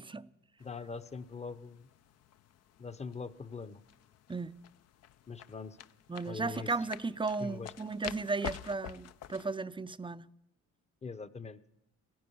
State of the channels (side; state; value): both; normal; correlation 0.42